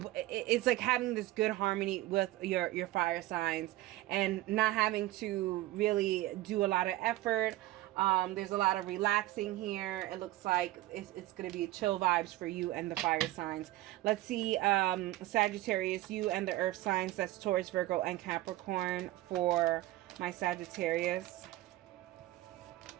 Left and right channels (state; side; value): quieter; left; 16.8 dB